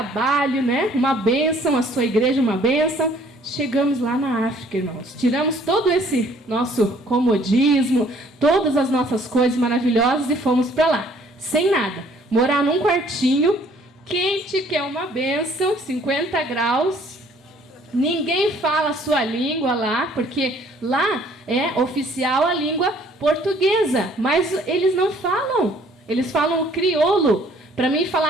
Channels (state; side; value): normal; both; correlation 0.59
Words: né? Uma bênção, a sua igreja uma bênção. Chegamos lá na África, irmãos. Tiramos todo esse nosso comodismo, todas as nossas coisas maravilhosas e fomos para lá, sem nada. Morar num quartinho, quente, que é uma bênção, 50 graus. Ninguém fala a sua língua lá, porque lá é oficial a língua portuguesa, mas eles não falam. Eles falam o crioulo. Para mim